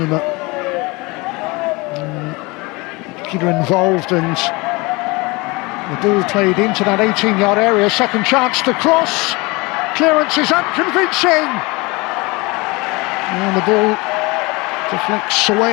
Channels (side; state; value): right; quieter; 25.1 dB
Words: Involved, and the ball played into that 18-yard area. Second chance to cross. Clearance is unconvincing, and the ball deflects